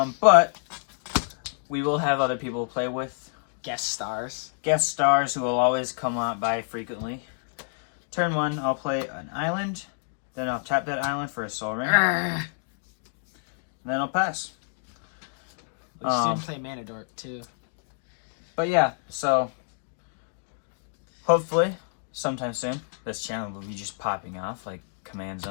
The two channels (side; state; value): right; silent; digital silence